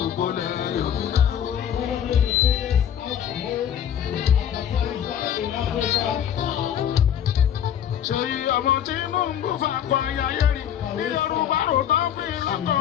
ilẹ̀ Yorùbá. Seyi ọmọ Tinubu fakọ ayáyé rí ní Yorùbá rò tán fi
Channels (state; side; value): quieter; right; 9.6 dB